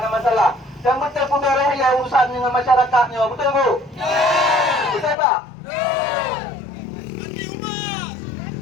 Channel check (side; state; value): right; drops out; at 5.2 s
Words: masalah. Yang penting beres ya urusan dengan masyarakatnya, betul bu? Betul pak?